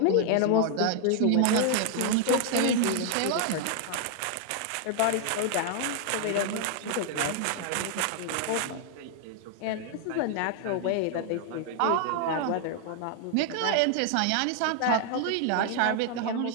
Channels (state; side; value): different; both; correlation 0.00